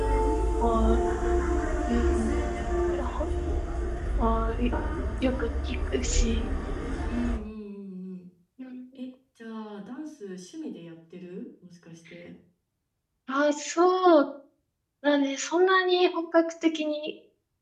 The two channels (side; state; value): both; identical; correlation 1.00